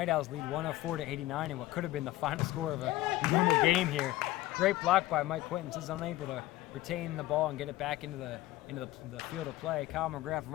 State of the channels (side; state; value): right; quieter; 16.9 dB